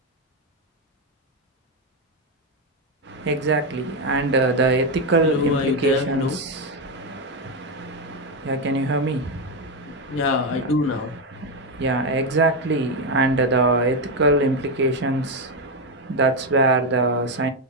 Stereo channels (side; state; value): both; normal; correlation 0.07